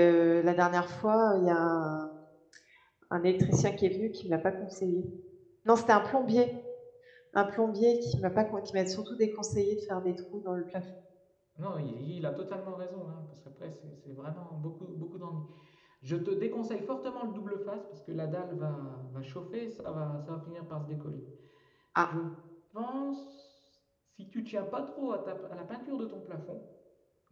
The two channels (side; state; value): both; identical; correlation 1.00